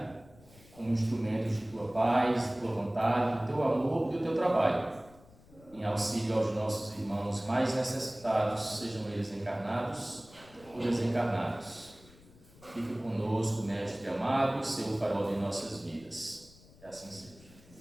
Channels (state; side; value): noise; left; rumble, 24 dB below the sound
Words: como instrumentos de tua paz, de tua vontade, do teu amor e do teu trabalho, em auxílio aos nossos irmãos mais necessitados, sejam eles encarnados ou desencarnados. Fique conosco, Mestre amado, seu farol de nossas vidas. Que assim